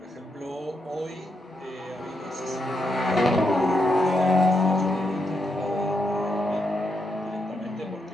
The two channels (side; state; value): both; normal; correlation 0.81